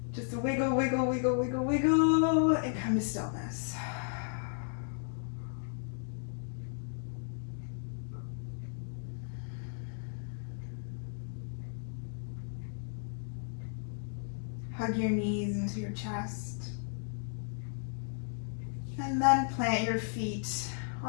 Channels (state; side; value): silent; right; digital silence